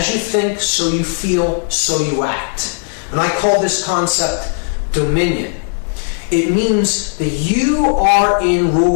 you think, so you feel, so you act. And I call this concept dominion. It means that you are in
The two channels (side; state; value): right; silent; digital silence